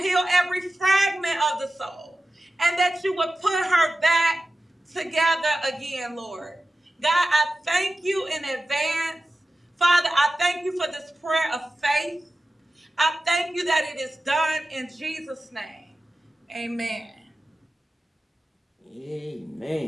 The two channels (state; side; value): normal; both; correlation 0.94